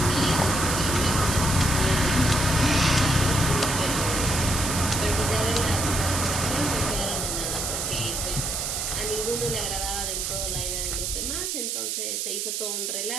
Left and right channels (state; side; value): noise; right; hiss, 2 dB below the sound